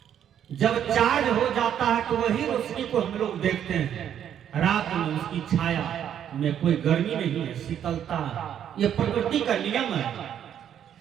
जब चार्ज हो जाता है तो वही रोशनी को हम लोग देखते हैं। रात में उसकी छाया में कोई गर्मी नहीं है, शीतलता है। यह प्रकृति का नियम है।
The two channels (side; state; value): left; quieter; 9.6 dB